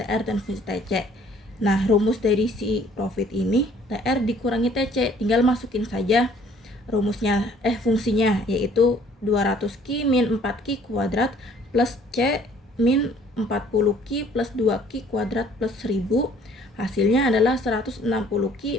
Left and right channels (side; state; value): both; normal; correlation 0.58